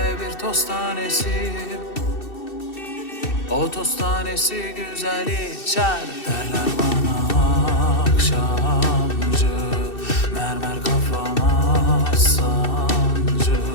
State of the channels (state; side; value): late; right; 2.6 ms